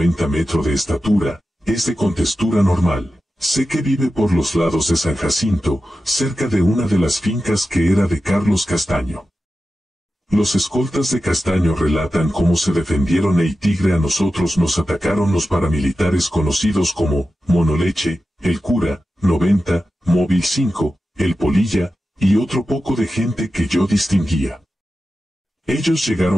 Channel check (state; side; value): normal; both; correlation 0.92